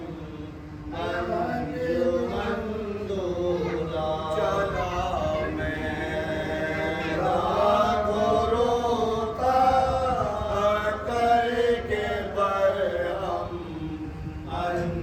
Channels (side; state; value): both; identical; correlation 1.00